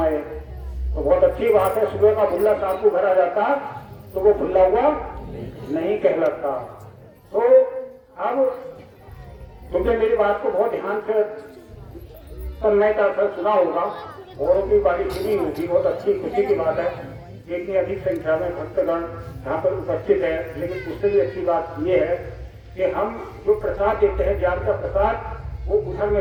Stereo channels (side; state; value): both; identical; correlation 1.00